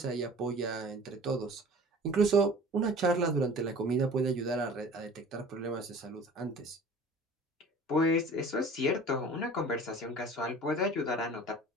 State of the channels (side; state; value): both; normal; correlation 0.44